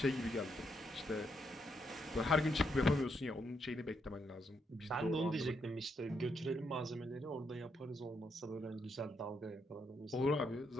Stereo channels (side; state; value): both; normal; correlation 0.77